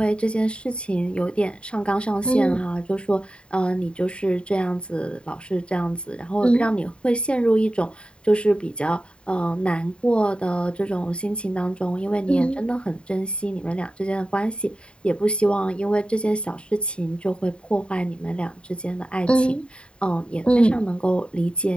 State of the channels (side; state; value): right; late; 0.054 ms